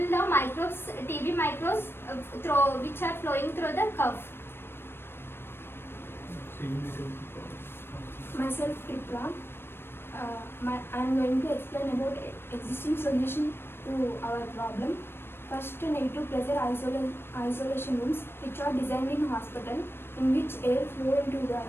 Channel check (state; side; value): late; right; 0.11 ms